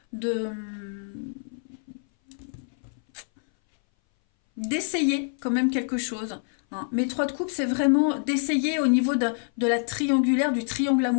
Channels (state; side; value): silent; right; 59 dB below the other